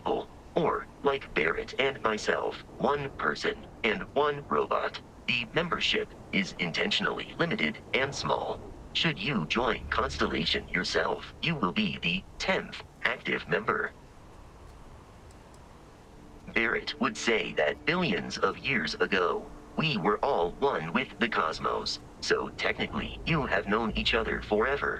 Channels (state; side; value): identical; both; correlation 1.00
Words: or, like Barrett and myself, 1 person and 1 robot. The membership is intentionally limited and small. Should you join Constellation yourself, you will be the 10th active member. Barrett would say that billions of years ago, we were all one with the cosmos, so technically you have known each other